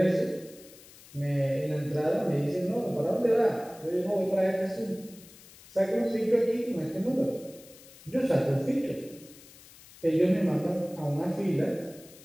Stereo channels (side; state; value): left; noise; hiss, 21 dB below the sound